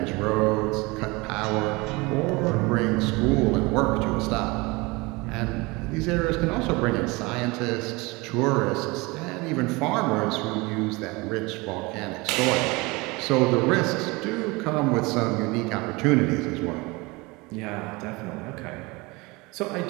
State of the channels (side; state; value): left; quieter; 24.4 dB